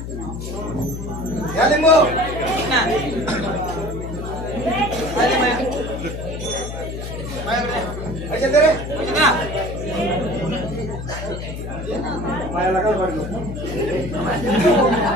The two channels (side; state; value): left; noise; hum, 7 dB below the sound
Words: या लिंबू अच्छा दे रे.